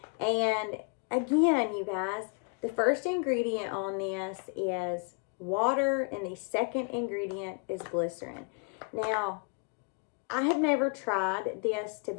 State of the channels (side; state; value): right; quieter; 35.1 dB